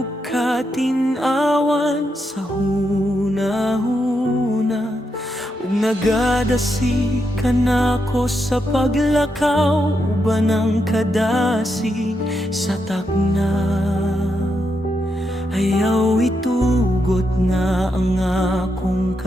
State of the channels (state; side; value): normal; both; correlation 0.82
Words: katinawan sa hunahuna, ug nagadasi ka nako sa paglakaw, uban ang kadasig sa takna. Ayaw itugot nga ang akong